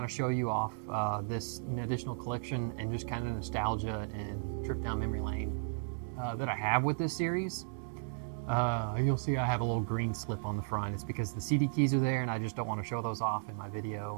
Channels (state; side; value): silent; left; 55 dB below the other